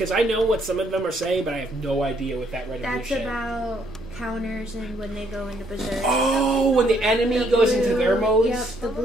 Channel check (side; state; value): both; normal; correlation 0.69